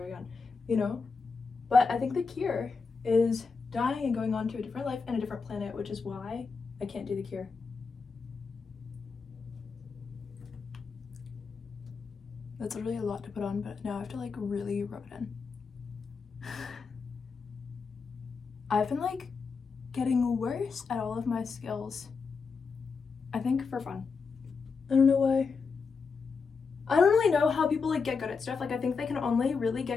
again, you know? But I think the cure is dying and going on to a different life and a different planet, which is why I can't do the cure. That's literally a lot to put on, but now I have to like really rub it in. I've been like getting worse at all of my skills. I think for fun. I don't know why. I don't really know how people like get good at stuff. Like, I think they can only really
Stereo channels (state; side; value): quieter; right; 5.0 dB